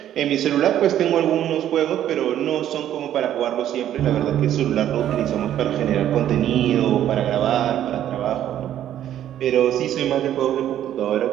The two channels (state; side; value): quieter; left; 11.3 dB